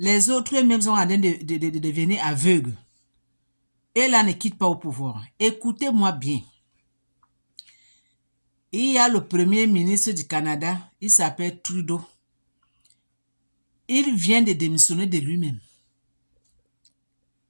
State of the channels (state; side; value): inverted; both; correlation -1.00